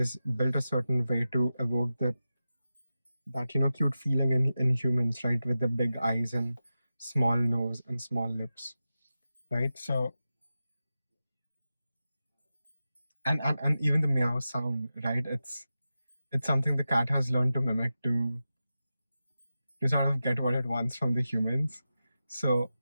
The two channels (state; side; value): inverted; both; correlation -0.92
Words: built a certain way to evoke that cute feeling in humans, right? With the big eyes and small nose and small lips, right? So, and even the meow sound, right? It's something the cat has learned to mimic to sort of get what it wants from the humans. So